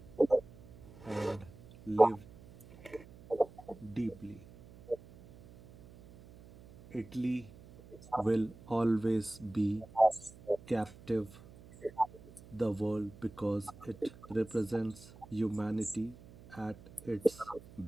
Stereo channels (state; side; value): noise; right; hum, 21 dB below the sound